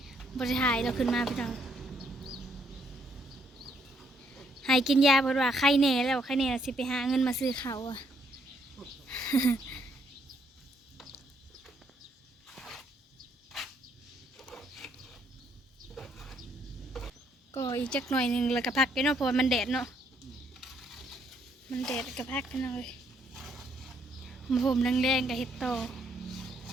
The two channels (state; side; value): normal; both; correlation 0.71